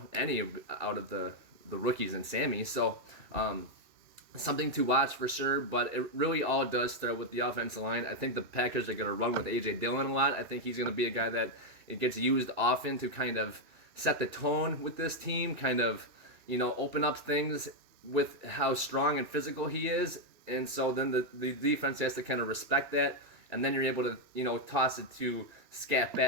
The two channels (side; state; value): left; late; 2.6 ms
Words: any out of the rookies and Sammy. So something to watch for sure, but it really all does start with the offensive line. I think the Packers are going to run with A.J. Dillon a lot. I think he's going to be a guy that it gets used often to kind of set the tone with this team, kind of, open up things with how strong and physical he is. And so then the defense has to kind of respect that, and then you're able to, toss it to scat